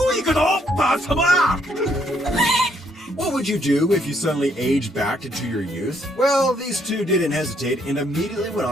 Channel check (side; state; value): both; normal; correlation 0.70